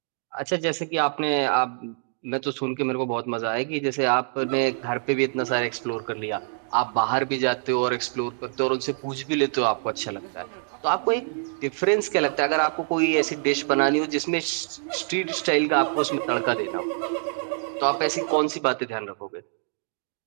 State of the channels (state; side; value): silent; left; digital silence